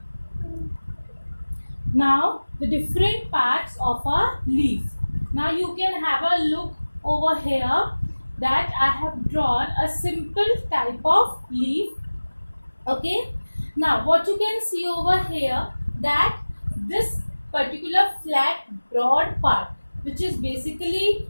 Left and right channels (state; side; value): inverted; both; correlation -1.00